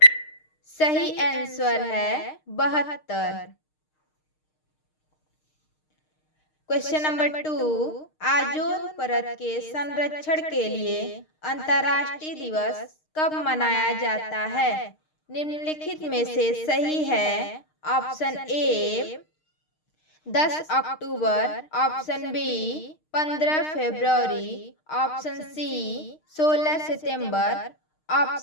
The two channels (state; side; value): late; right; 6.5 ms